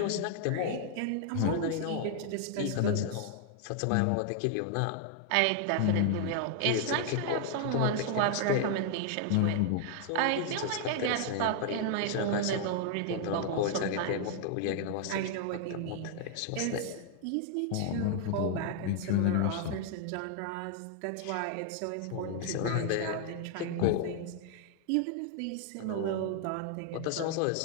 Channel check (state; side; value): different; both; correlation 0.00